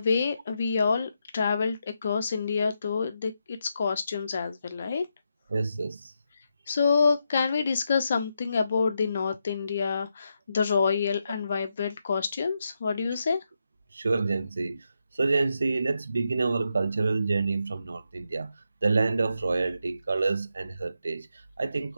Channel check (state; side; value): inverted; both; correlation -0.84